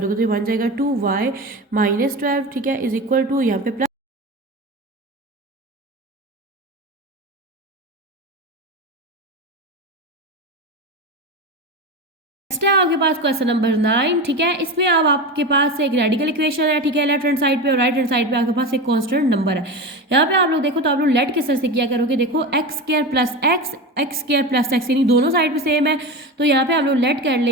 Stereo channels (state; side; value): normal; both; correlation 0.24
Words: तो ये बन जाएगा 2y - 12, ठीक है, इज इक्वल टू यहाँ पे प्लस नेक्स्ट है आपके पास क्वेश्चन नंबर 9, ठीक है। इसमें अब आपके पास एक रेडिकल इक्वेशन है, ठीक है, लेफ्ट हैंड साइड पे और राइट हैंड साइड पे आपके पास एक कांस्टेंट नंबर है। यहाँ पे आप लोग देखो तो आप लोग लेट किस तरह से किया करोगे, देखो x² + x, x² + x, यानी दोनों साइड पे सेम है, तो यहाँ पे आप लोग लेट कर